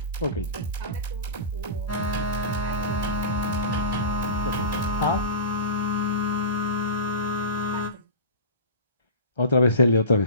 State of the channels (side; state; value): both; inverted; correlation -0.31